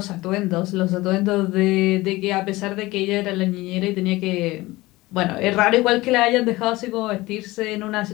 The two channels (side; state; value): right; quieter; 19.8 dB